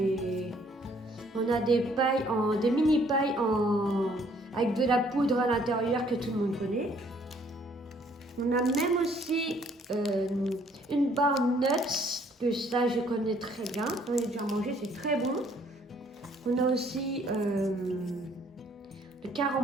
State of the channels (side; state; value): both; normal; correlation 0.63